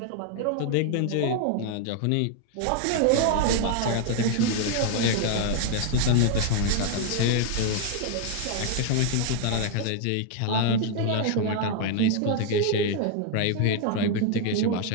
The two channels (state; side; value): different; both; correlation 0.00